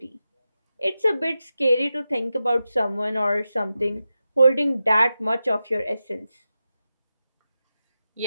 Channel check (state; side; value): inverted; both; correlation -0.92